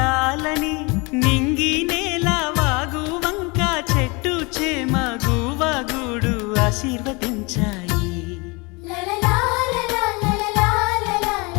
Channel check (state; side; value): quieter; right; 27.8 dB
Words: నింగి నేల వాగు వంక చెట్టు చేమ గువగుడు ఆశీర్వదించాయి.